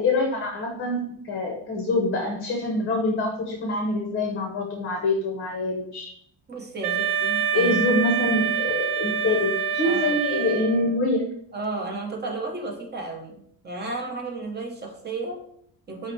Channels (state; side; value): normal; both; correlation 0.01